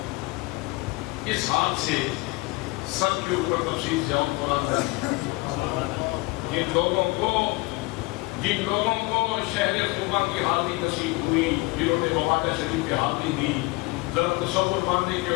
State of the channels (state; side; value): quieter; right; 23.9 dB